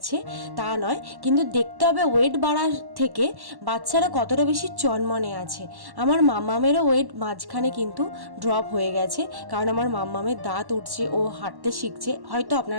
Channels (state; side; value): late; left; 1.1 ms